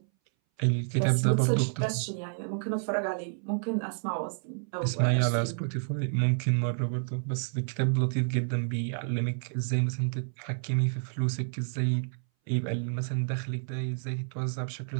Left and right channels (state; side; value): silent; left; 58 dB below the other